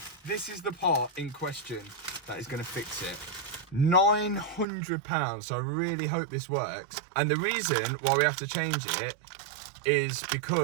this is the part in question that is going to fix it. £900, so I really hope this works. And the reason why we have to change it is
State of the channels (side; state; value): left; drops out; at 4.7 s